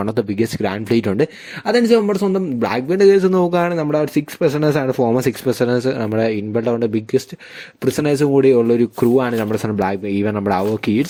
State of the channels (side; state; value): both; identical; correlation 1.00